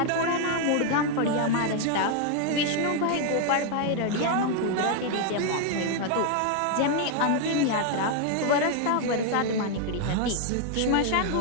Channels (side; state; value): both; different; correlation 0.00